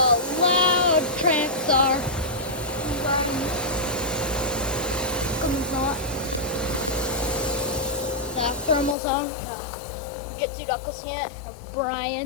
loud Tranxar. Not. The thermal zone. Jitsu Knuckles unit. A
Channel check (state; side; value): drops out; right; at 9.0 s